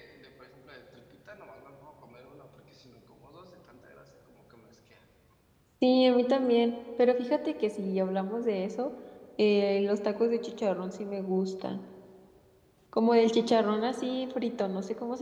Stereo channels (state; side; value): identical; both; correlation 1.00